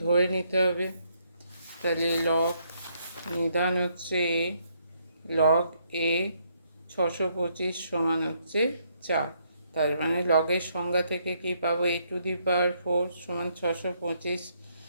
ধরে নিতে হবে। তাহলে নিধান হচ্ছে লগ এ 625 সমান হচ্ছে 4। তার মানে লগের সংজ্ঞা থেকে কি পাবো, a⁴ সমান 625,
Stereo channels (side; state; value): both; inverted; correlation -0.72